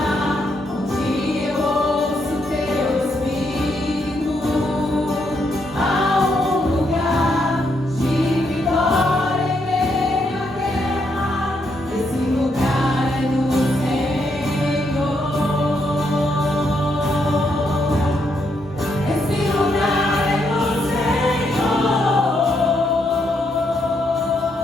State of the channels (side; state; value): both; normal; correlation 0.77